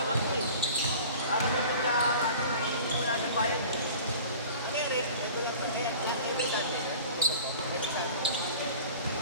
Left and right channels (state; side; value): inverted; both; correlation -0.42